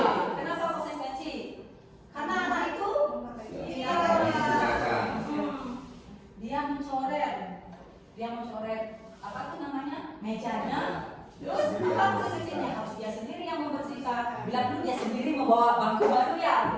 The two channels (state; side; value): identical; both; correlation 1.00